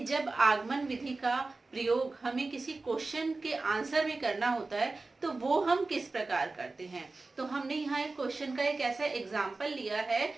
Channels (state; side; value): quieter; left; 3.5 dB